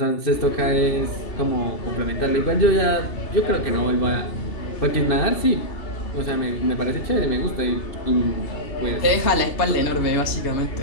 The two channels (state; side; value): late; right; 2.8 ms